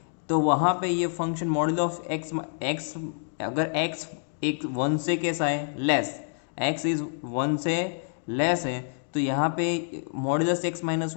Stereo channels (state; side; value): silent; right; digital silence